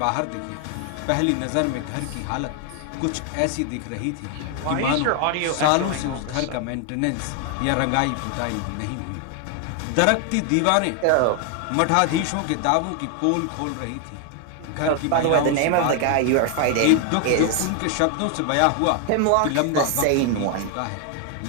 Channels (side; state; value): both; different; correlation 0.00